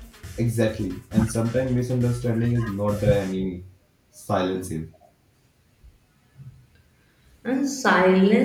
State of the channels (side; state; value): both; identical; correlation 1.00